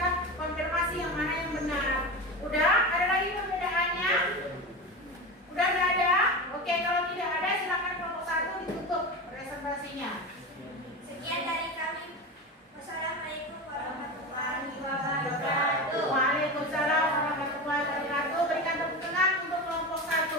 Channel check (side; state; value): both; normal; correlation 0.24